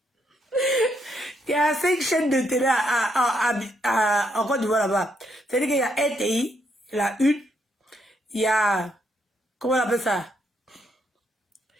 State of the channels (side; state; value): both; normal; correlation 0.76